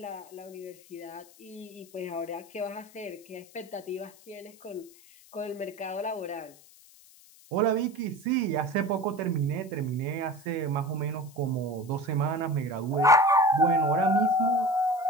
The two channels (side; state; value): left; noise; hiss, 24 dB below the sound